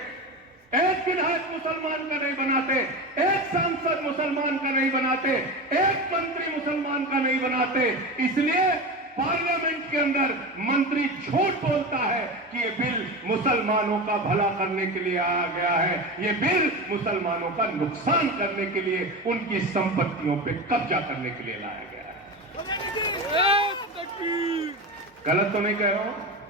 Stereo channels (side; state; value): both; normal; correlation 0.24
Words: एक विधायक मुसलमान का नहीं बनाते, एक सांसद मुसलमान का नहीं बनाते, एक मंत्री मुसलमान का नहीं बनाते। इसलिए पार्लियामेंट के अंदर मंत्री झूठ बोलता है कि ये बिल मुसलमानों का भला करने के लिए आया गया है, ये बिल मुसलमानों का नुकसान करने के लिए, उनकी संपत्तियों पे कब्जा करने के लिए लाया गया है। गलत तो नहीं कह रहा हूं?